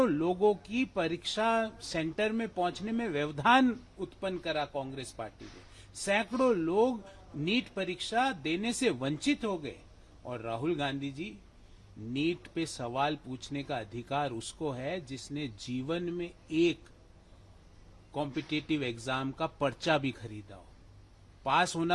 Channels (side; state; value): both; identical; correlation 1.00